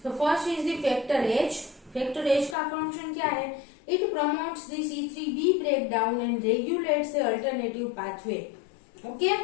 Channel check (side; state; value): right; drops out; at 2.6 s